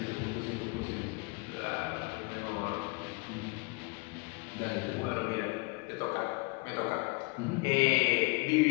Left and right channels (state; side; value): quieter; right; 28.0 dB